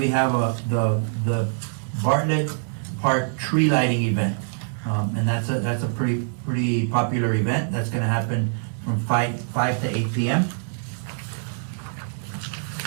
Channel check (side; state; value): left; silent; digital silence